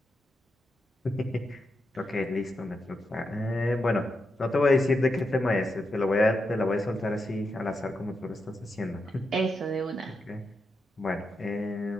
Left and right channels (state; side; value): normal; both; correlation 0.86